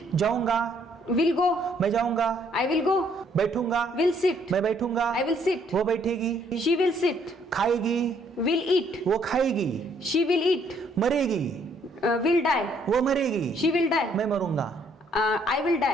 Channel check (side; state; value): both; normal; correlation 0.66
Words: जाऊंगा, विल गो, मैं जाऊंगा। आई विल गो, बैठूंगा, विल सिट, मैं बैठूंगा। आई विल सिट, वो बैठेगी। शी विल सिट, खाएगी, विल ईट, वो खाएगी। शी विल ईट, मरेगी, विल डाई, वो मरेगी। शी विल डाई, मैं मरूंगा, I will